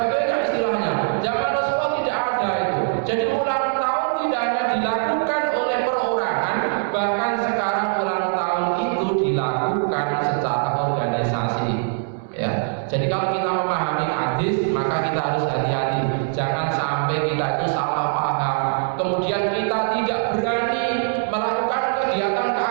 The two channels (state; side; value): silent; left; 64 dB below the other